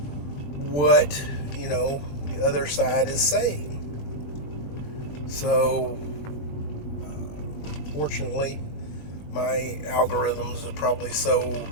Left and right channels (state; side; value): late; right; 20 ms